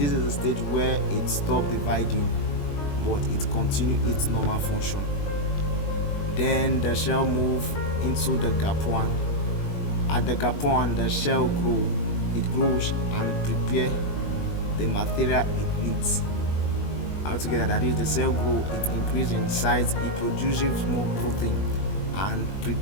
is the stage where it stops dividing, but it continues its normal function. Then the cell moves into the gap 1. At the gap 1, the cell grows and prepares the material it needs. Altogether, that is, the cell grows, it increases in size, it produces more protein and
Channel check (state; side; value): late; right; 21 ms